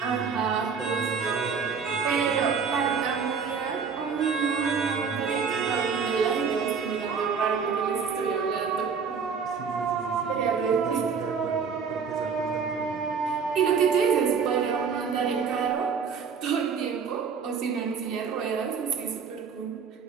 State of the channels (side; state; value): left; quieter; 6.0 dB